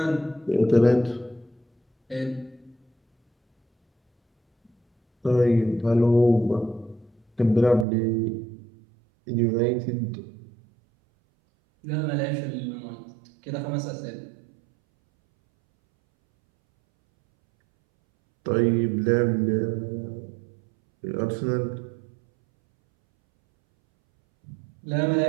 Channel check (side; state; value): left; drops out; at 7.9 s